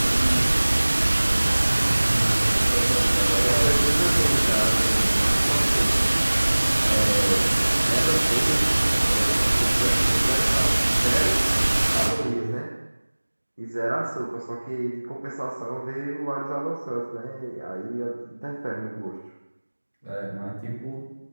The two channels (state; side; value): inverted; both; correlation -1.00